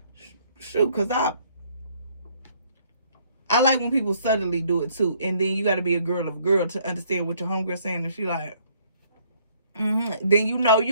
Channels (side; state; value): both; inverted; correlation -0.64